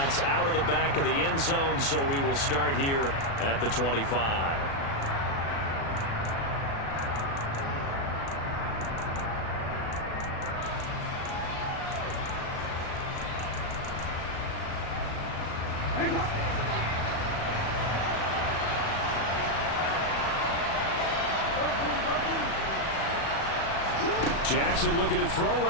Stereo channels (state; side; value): late; right; 36 ms